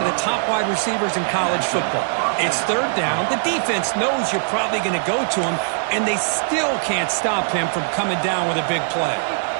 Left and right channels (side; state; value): left; silent; digital silence